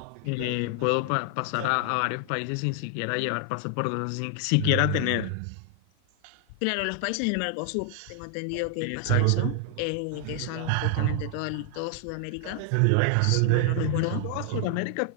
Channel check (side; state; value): both; different; correlation 0.00